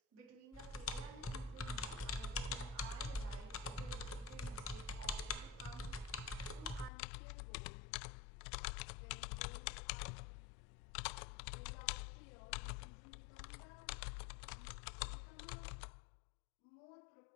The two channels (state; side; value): drops out; right; at 6.9 s